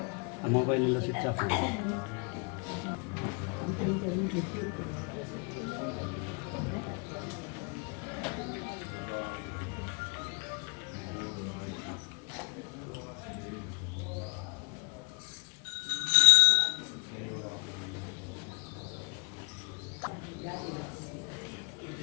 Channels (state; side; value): quieter; right; 33.9 dB